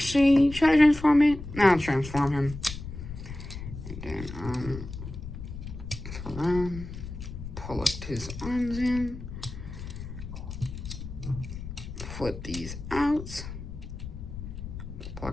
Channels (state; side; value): noise; left; rumble, 10 dB below the sound